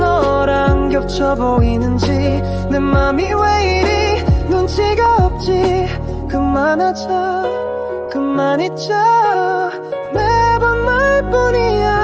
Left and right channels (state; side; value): identical; both; correlation 1.00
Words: 겹쳐 보이는지 내 맘이 왜 이리 눈치가 없지. 그만하자 그만 잊자 매번